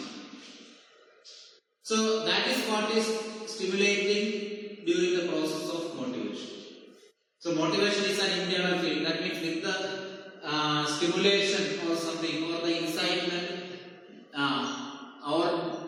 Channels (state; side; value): identical; both; correlation 1.00